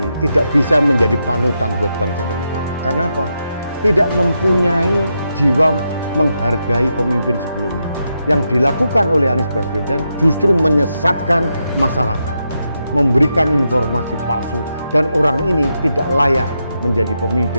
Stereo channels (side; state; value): both; inverted; correlation -0.84